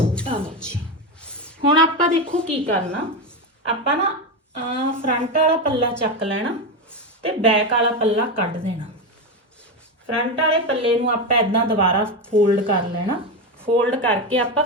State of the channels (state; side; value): normal; both; correlation 0.14